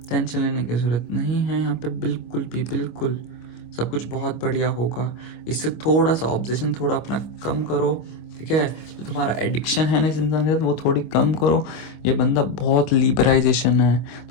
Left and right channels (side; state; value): right; late; 25 ms